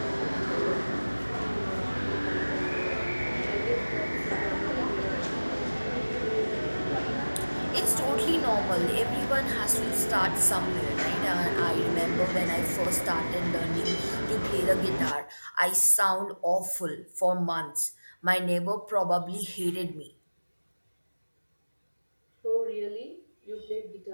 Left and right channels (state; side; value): inverted; both; correlation -1.00